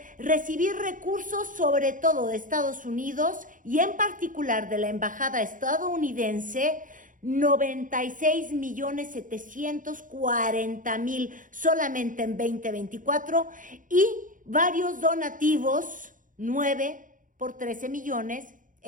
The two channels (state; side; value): late; left; 0.38 ms